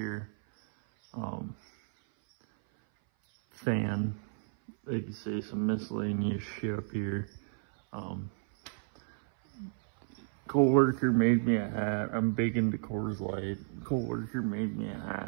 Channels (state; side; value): silent; left; 56 dB below the other